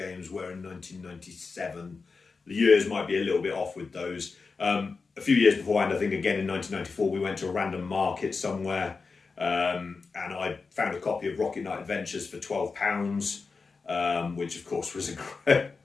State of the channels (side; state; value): right; quieter; 4.5 dB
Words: were in 1997. The years might be a little bit off with those. A few years beforehand, I think again in 1994, we went to a random market somewhere and I found a copy of Rocket Knight Adventures for £12, which of course was a